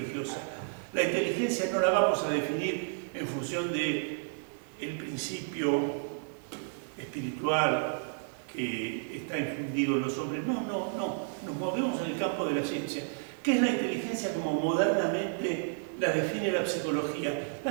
La inteligencia no la vamos a definir en función del principio espiritual que está infundido en los hombres. No. Nos movemos en el campo de la ciencia. ¿Qué es la inteligencia como modernamente la define la psicología?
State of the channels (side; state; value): left; silent; digital silence